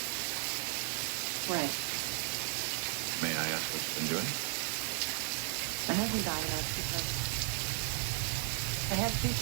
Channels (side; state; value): left; silent; digital silence